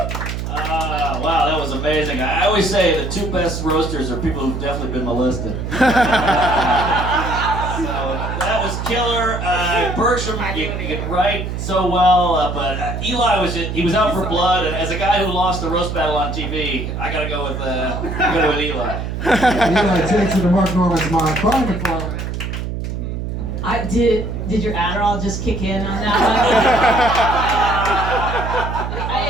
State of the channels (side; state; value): right; noise; hum, 4 dB below the sound